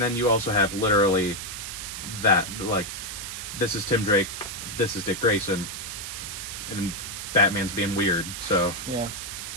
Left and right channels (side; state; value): right; noise; hiss, 7 dB below the sound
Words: then you also have literally that, like, this is Tim Drake, this is Dick Grayson, and Batman's being weird, so... Yeah.